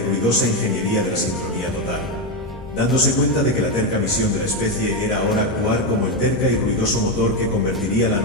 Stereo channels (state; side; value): noise; left; rumble, 18 dB below the sound